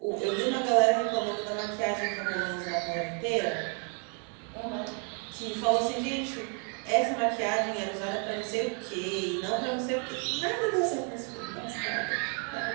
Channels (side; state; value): left; quieter; 39.9 dB